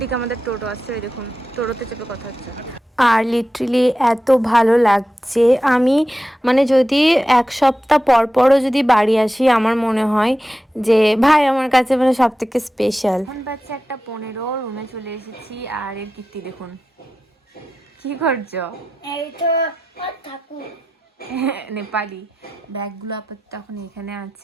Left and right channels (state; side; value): normal; both; correlation 0.92